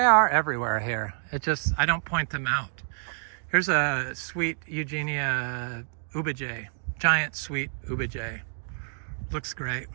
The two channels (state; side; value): silent; left; digital silence